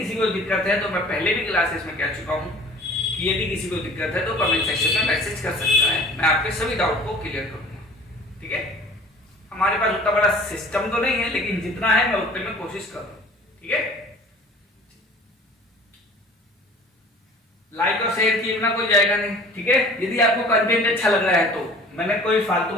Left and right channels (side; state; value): both; normal; correlation 0.47